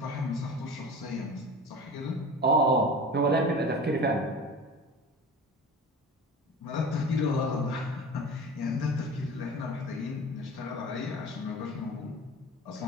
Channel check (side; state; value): both; normal; correlation 0.35